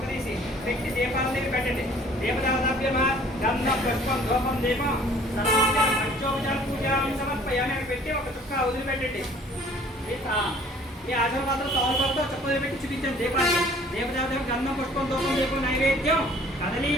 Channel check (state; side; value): normal; both; correlation 0.53